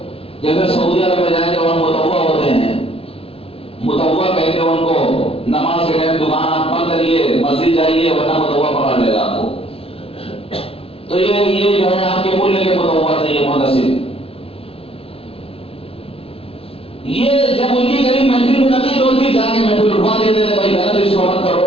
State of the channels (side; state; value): right; late; 0.27 ms